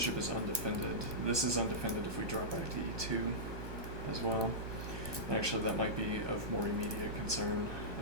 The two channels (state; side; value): late; left; 1.2 ms